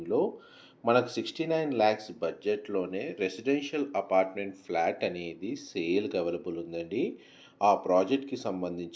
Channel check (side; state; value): both; identical; correlation 1.00